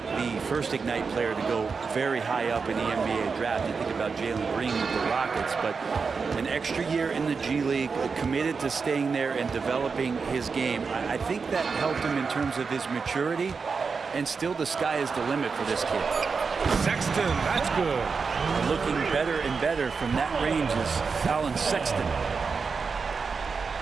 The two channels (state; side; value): quieter; left; 5.1 dB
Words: the first Ignite player to go very high up in the NBA draft. You think about Jalen Green with the Rockets, but an extra year in the G League, committed to staying there and developing his game. I think that helped him in terms of his maturity. And still the sky is the limit for this kid. Sexton, that's good. And looking better and better from that range is Colin Sexton.